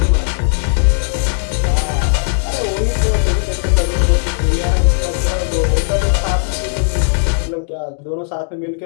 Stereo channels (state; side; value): silent; right; digital silence